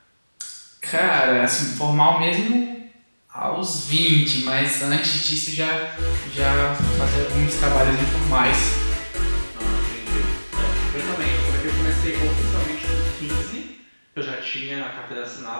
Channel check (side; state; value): both; inverted; correlation -1.00